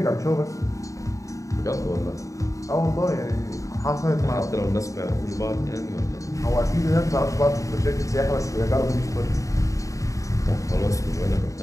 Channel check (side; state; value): right; late; 0.16 ms